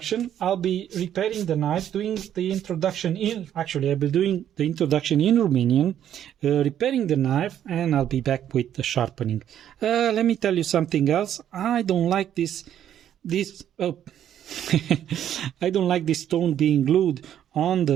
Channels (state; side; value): quieter; left; 10.4 dB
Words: I'll be repairing the knife, doing the introduction in, actually I'll be doing the introduction in Romanian, repairing the knife, and I'll be back with the sharpening. Let me tell you something else. I don't like this I don't like this stone being glued on